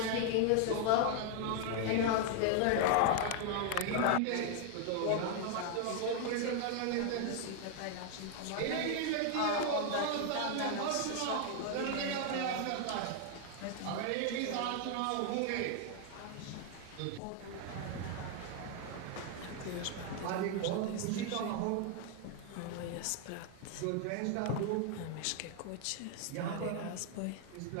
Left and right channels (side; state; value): both; different; correlation 0.00